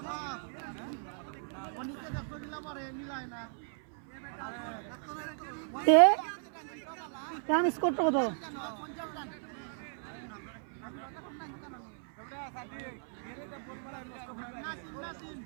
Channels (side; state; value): left; silent; 54 dB below the other